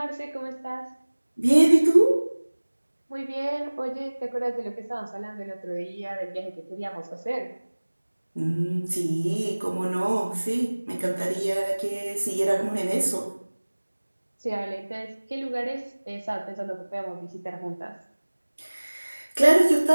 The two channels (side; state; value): both; inverted; correlation -1.00